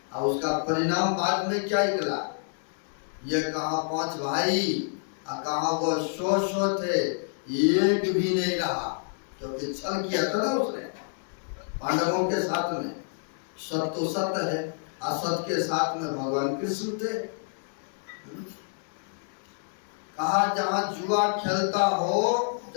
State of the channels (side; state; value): right; silent; 59 dB below the other